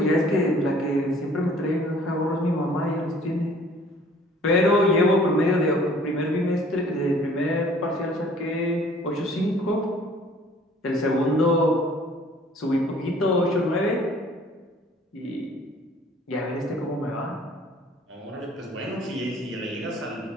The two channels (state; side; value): normal; both; correlation 0.54